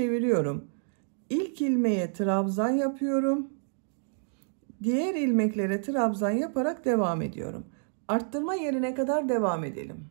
İlk ilmeğe trabzan yapıyorum. Diğer ilmeklere trabzan yaparak devam ediyorum. Arttırma yerine kadar devam edelim.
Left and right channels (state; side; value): silent; left; digital silence